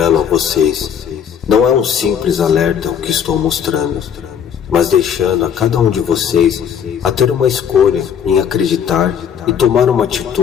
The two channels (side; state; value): right; quieter; 8.2 dB